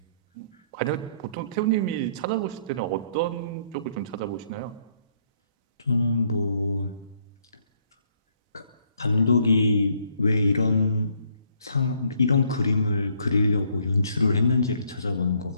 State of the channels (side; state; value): both; inverted; correlation -0.67